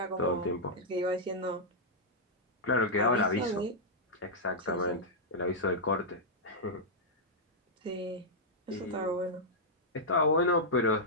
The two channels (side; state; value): both; normal; correlation -0.08